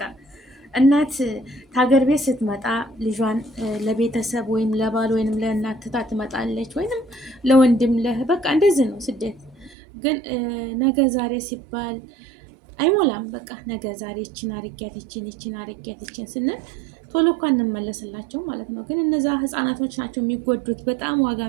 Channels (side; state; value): left; drops out; at 9.8 s